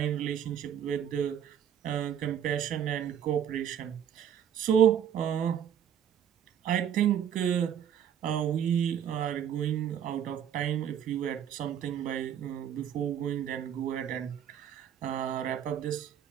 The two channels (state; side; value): quieter; left; 9.3 dB